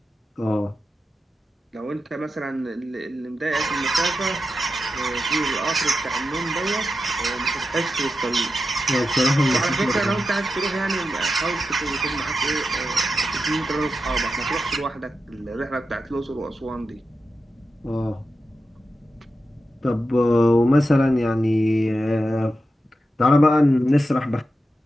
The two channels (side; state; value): both; normal; correlation 0.89